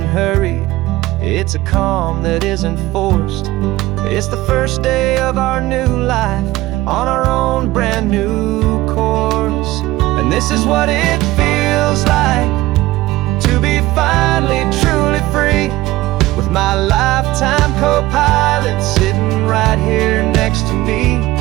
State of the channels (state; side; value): quieter; left; 17.6 dB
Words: hurried, it's a calm that isn't forced. It's the first day of our new life on our own brand new course. And this is what it feels like to be finally truly free, with my lifetime co-pilot sitting right here next to me.